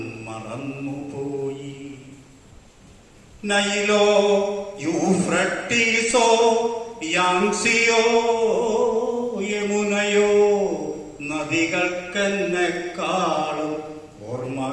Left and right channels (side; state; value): both; identical; correlation 1.00